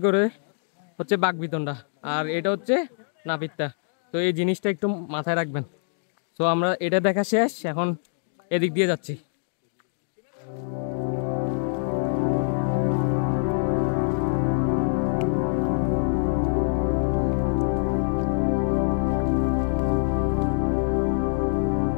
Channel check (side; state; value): right; silent; digital silence